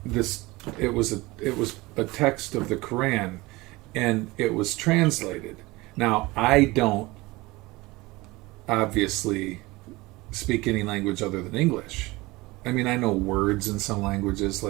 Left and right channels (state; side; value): quieter; left; 21.7 dB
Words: this. It was a text of the Quran, and it was translated. Now, I don't obviously speak any language other than English. I mean, I know words in some languages